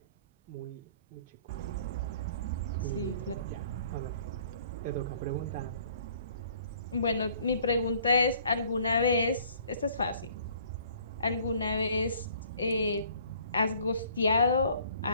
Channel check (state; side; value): inverted; both; correlation -0.57